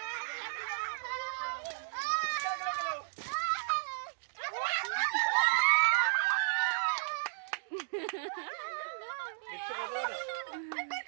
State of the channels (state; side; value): silent; left; digital silence